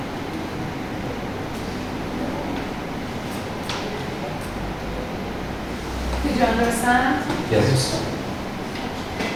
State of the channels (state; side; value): identical; both; correlation 1.00